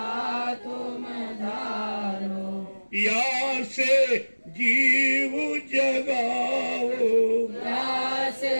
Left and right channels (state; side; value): inverted; both; correlation -1.00